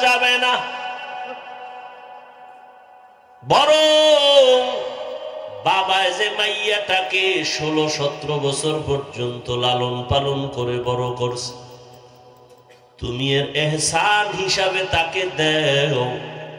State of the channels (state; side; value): identical; both; correlation 1.00